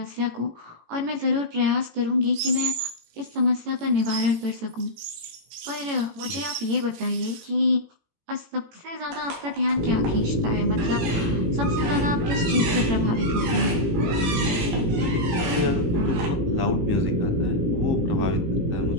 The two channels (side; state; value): left; late; 18 ms